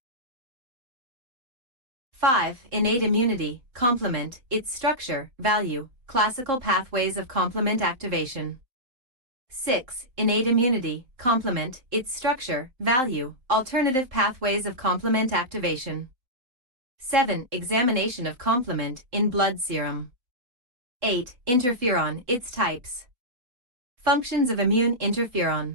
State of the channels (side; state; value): left; late; 3.8 ms